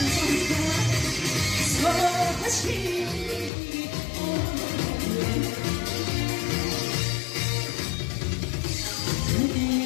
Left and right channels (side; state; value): right; drops out; at 3.5 s